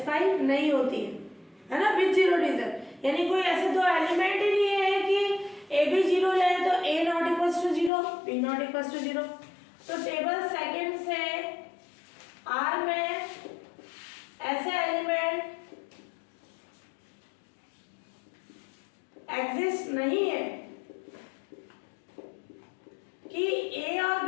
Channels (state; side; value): drops out; right; at 7.9 s